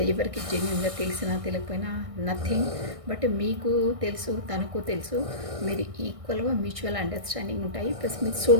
ఎవరికి జెన్యున్గా తెలిసినా తెలియకపోయినా నథింగ్. బట్ మీకు తెలుసు, తనకు తెలుసు, మీరు ఈక్వల్గా మ్యూచువల్ అండర్స్టాండింగ్ ఉంటాయి. ప్లస్ మీ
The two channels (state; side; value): late; left; 1.6 ms